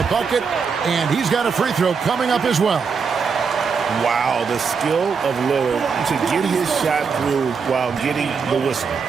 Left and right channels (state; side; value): quieter; left; 5.7 dB